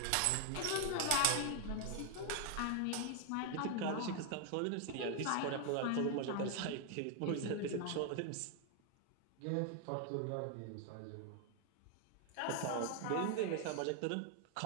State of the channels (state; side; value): different; both; correlation 0.00